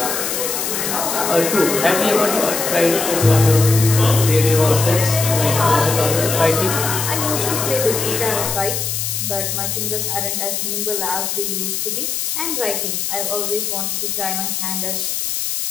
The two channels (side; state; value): left; noise; hiss, 2 dB below the sound